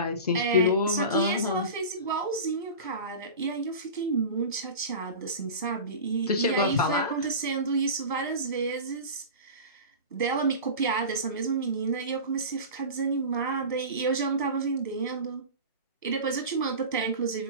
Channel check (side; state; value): both; inverted; correlation -0.31